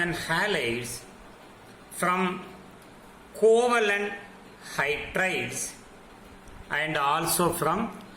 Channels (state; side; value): identical; both; correlation 1.00